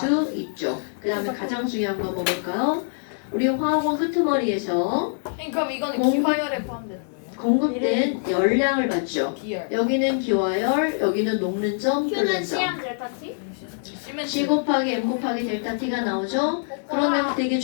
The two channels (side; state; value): right; silent; digital silence